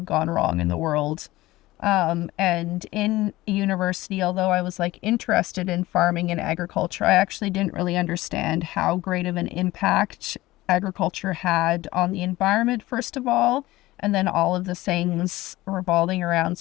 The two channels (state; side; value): quieter; right; 18.1 dB